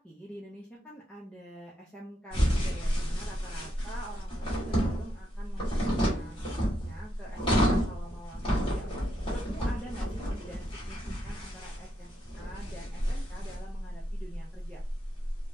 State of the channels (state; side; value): normal; both; correlation 0.81